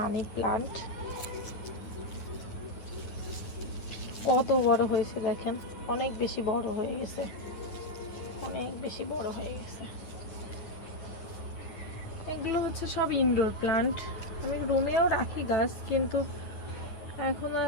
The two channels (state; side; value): late; right; 9.7 ms